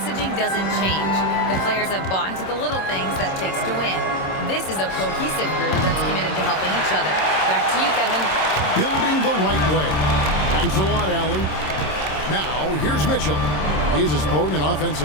doesn't change. The players have bought into the little things that takes to win. This is a cohesive group that's committed to helping each other. Back to you, Kevin. Building the right way. Thanks a lot, Allie. Now, here's Mitchell. He's as potent an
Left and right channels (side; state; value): right; late; 26 ms